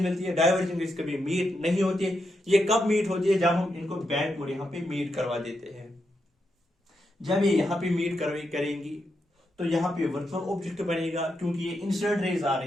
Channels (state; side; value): normal; both; correlation 0.83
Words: मिलती है। डाइवर्जिंग रेज कभी मीट नहीं होती है। ये कब मीट होती है, जब हम इनको बैकवर्ड यहाँ पे मीट करवा देते हैं। जब ये यहाँ पे मीट करेंगी तो यहाँ पे वर्चुअल ऑब्जेक्ट बनेगा, क्योंकि ये इंसिडेंट रेज आ